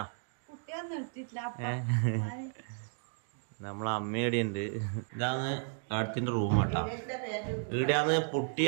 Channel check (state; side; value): silent; left; 55 dB below the other